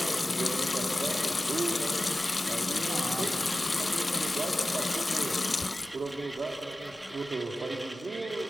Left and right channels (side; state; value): both; normal; correlation 0.95